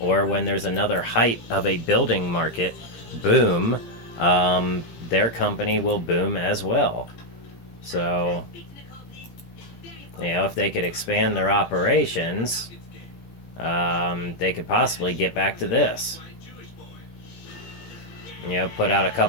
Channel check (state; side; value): late; right; 17 ms